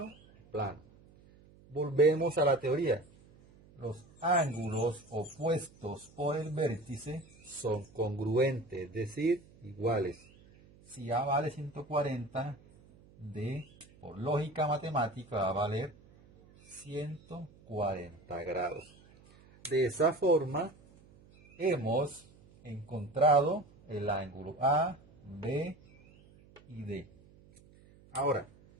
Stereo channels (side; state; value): right; noise; hum, 26 dB below the sound